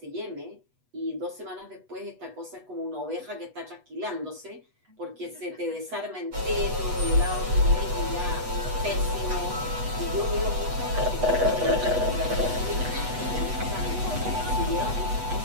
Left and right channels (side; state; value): left; late; 8.1 ms